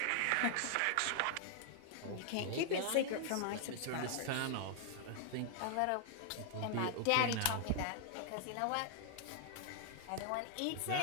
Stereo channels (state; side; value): different; both; correlation -0.01